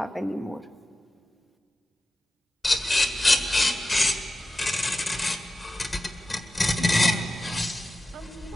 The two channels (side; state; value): both; normal; correlation 0.93